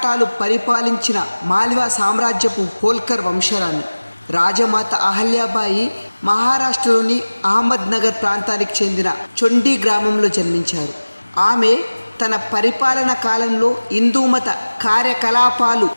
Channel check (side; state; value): both; inverted; correlation -1.00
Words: పరిపాలించిన మాల్వా సామ్రాజ్యపు హోల్కర్ వంశరాణి. రాజమాత అహల్యాబాయి మహారాష్ట్రలోని అహ్మద్నగర్ ప్రాంతానికి చెందిన చొండి గ్రామంలో జన్మించారు. ఆమె తన పరిపాలన కాలంలో హిందూమత కార్యకలాపాలు,